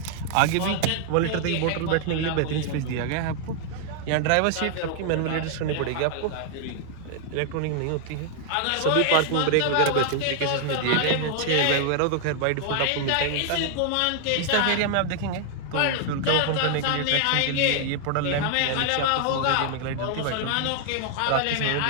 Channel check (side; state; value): both; different; correlation 0.00